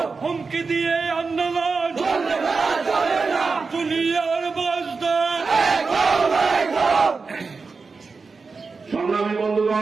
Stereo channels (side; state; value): left; quieter; 4.5 dB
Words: হুমকি দিয়ে আন্দোলন দুনিয়ার বাসদা। সংগ্রামী